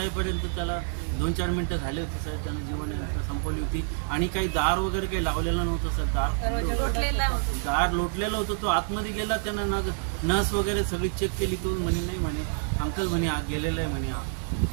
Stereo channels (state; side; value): silent; left; 60 dB below the other